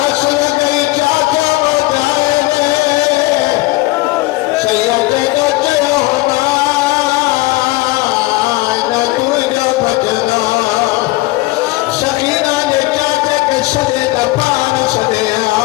गई चाचा वो जाएंगे सैयद का चयो होना न तुझे बचना सकीना ने चाचे के सजे का पान सदे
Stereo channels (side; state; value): right; quieter; 20.2 dB